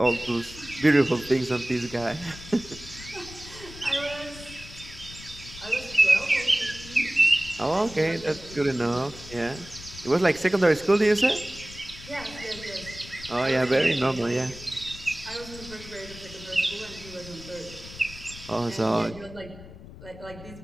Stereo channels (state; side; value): noise; left; rumble, 16 dB below the sound